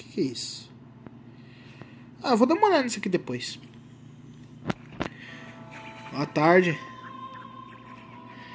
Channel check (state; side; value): identical; both; correlation 1.00